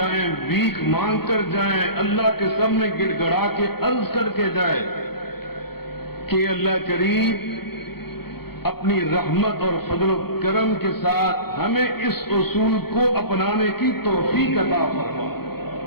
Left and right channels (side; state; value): right; late; 0.96 ms